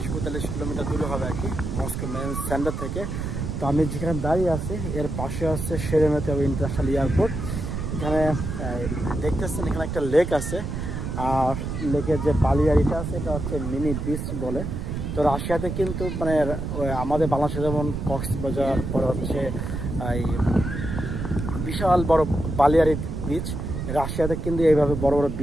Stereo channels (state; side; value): noise; right; rumble, 4 dB below the sound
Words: কিলোমিটার দূরে হবে আর কি, মস্কো মেন সেন্টার থেকে। তো আমি যেখানে দাঁড়িয়ে আছি এর পাশে হচ্ছে শেরেমেতেভ ইন্টারন্যাশনাল এয়ারপোর্ট। এখানে দেখতেছেন এখানে একটা লেক আছে, আর লেকের যে বালিয়ারিটা আছে এটা হচ্ছে মিনি বিচ বলে। তো রাশিয়াতে কিন্তু মানে আমাদের বাংলাদেশে যেমন কক্সবাজার, পরে হচ্ছে এই বিশাল বড় বালিয়ারি বিচ, রাশিয়াতে কিন্তু এইভাবে বড় বড়